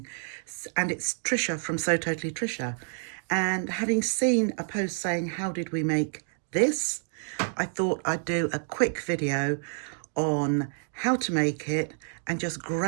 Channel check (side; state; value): left; silent; 59 dB below the other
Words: and it's Trisha from So Totally Trisha. And having seen a post saying, how did we make this? I thought I'd do a quick video on how to make it and just